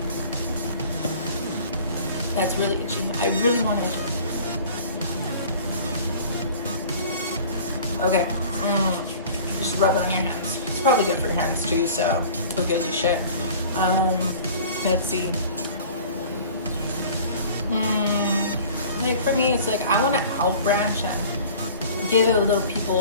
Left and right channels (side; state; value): both; inverted; correlation -0.45